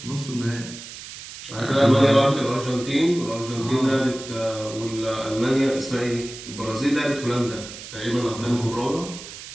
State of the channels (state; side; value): noise; right; hiss, 13 dB below the sound